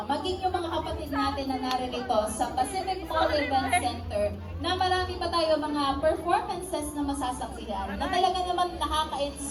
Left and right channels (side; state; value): both; identical; correlation 1.00